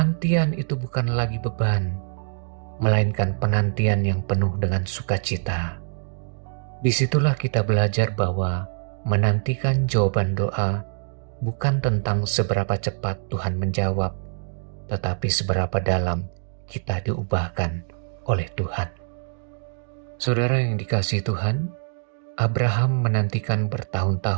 itu bukan lagi beban, melainkan penantian yang penuh dengan sukacita. Disitulah kita belajar bahwa menantikan jawaban doa bukan tentang seberapa cepat Tuhan menjawab, tetapi seberapa dalam kita diubahkan oleh Tuhan. Saudara yang dikasihi Tuhan, Abraham menantikan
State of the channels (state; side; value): silent; left; digital silence